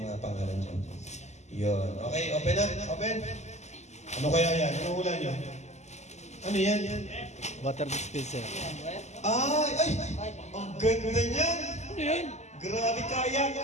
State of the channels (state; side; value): late; right; 0.33 ms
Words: pangalan dyan. Yun. Okay. Open na. Open. Ano kaya yan? Ano hula nyo? Ano yan? Water dispenser. Ay! Ang ganda niyan! Ano yan? Grabe kaya!